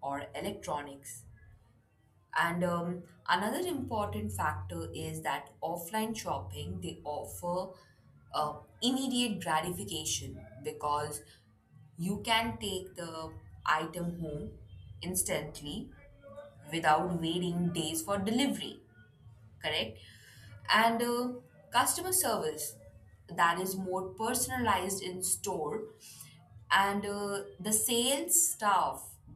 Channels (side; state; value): both; identical; correlation 1.00